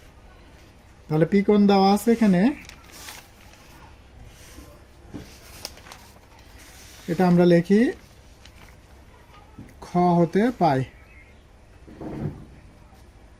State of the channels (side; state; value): both; identical; correlation 1.00